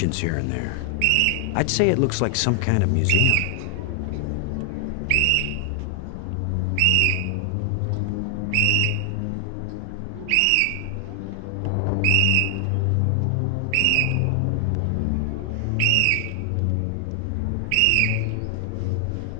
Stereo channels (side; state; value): both; different; correlation 0.00